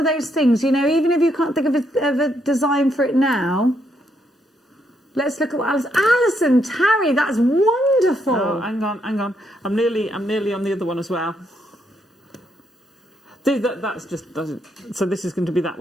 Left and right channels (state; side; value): normal; both; correlation 0.76